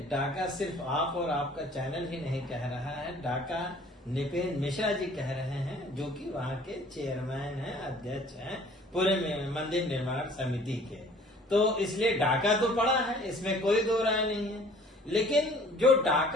डाका सिर्फ आप और आपका चैनल ही नहीं कह रहा है, डाका निपेन मिश्रा जी कह रहे हैं, जो कि वहाँ के चेयरमैन हैं, अध्यक्ष हैं पूरे मंदिर निर्माण समिति के। तो इसलिए डाका तो पड़ा है, इसमें कोई दो राय नहीं है। लेकिन जो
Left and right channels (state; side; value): normal; both; correlation 0.52